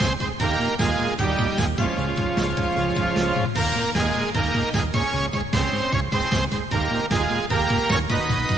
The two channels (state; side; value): noise; left; rumble, 12 dB below the sound